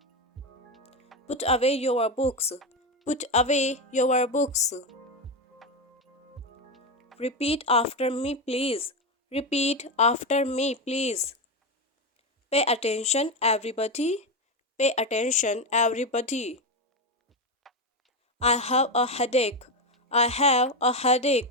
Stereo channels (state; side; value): normal; both; correlation 0.12